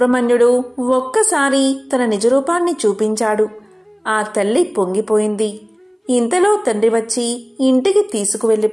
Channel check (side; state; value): both; identical; correlation 1.00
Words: ఒక్కసారి తన నిజరూపాన్ని చూపించాడు. ఆ తల్లి పొంగిపోయింది. ఇంతలో తండ్రి వచ్చి ఇంటికి